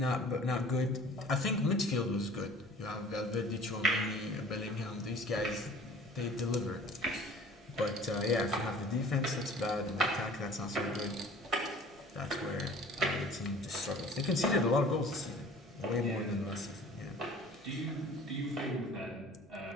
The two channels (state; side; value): normal; both; correlation 0.47